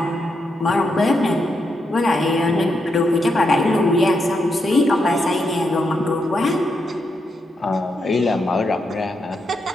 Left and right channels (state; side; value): normal; both; correlation 0.82